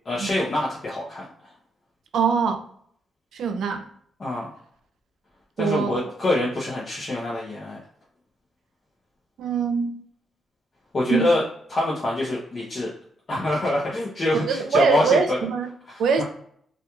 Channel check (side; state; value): both; normal; correlation 0.74